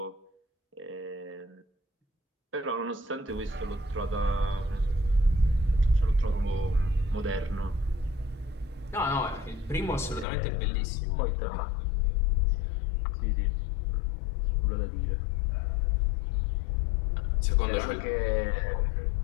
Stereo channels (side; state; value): right; drops out; at 10.2 s